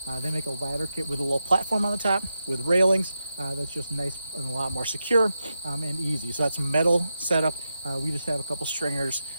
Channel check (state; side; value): inverted; both; correlation -0.88